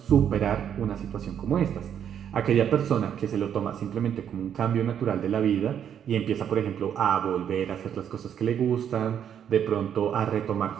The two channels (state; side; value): quieter; left; 8.9 dB